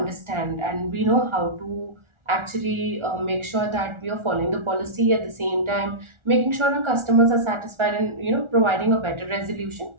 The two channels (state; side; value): late; left; 1.4 ms